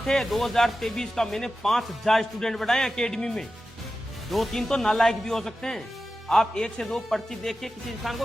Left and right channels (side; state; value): both; normal; correlation 0.93